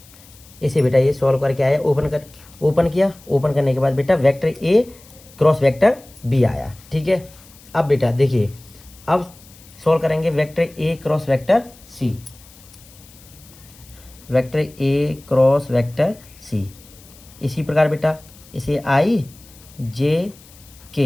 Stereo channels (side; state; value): left; noise; hiss, 24 dB below the sound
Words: इसे बेटा ये सॉल्व करके आया, ओपन किया, ओपन करने के बाद बेटा वेक्टर ए क्रॉस वेक्टर बी आया, ठीक है। अब बेटा देखिए, अब सॉल्व करेंगे वेक्टर ए क्रॉस वेक्टर सी, वेक्टर ए क्रॉस वेक्टर सी। इसी प्रकार बेटा इसे आई जे